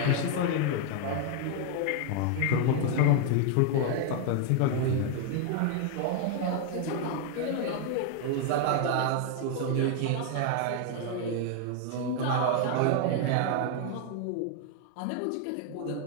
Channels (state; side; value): different; both; correlation 0.00